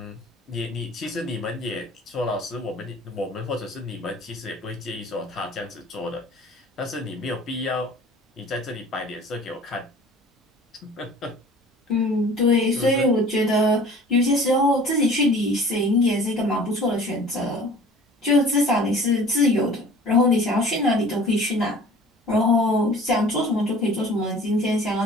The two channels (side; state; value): both; normal; correlation 0.47